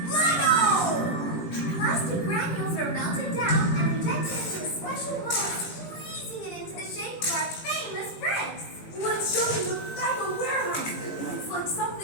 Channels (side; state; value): right; late; 18 ms